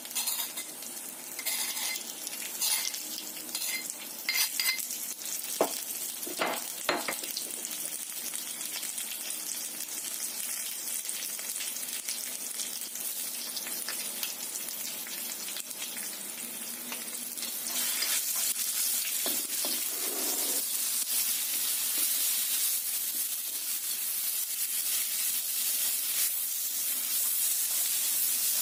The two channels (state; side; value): identical; both; correlation 1.00